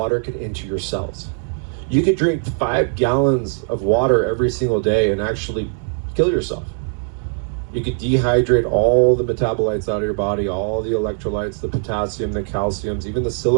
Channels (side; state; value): left; silent; 55 dB below the other